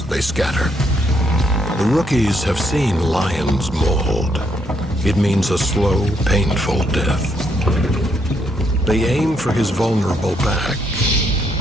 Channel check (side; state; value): both; normal; correlation 0.74